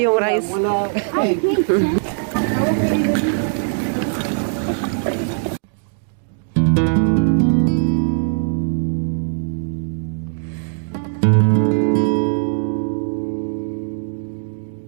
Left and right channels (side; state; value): left; silent; digital silence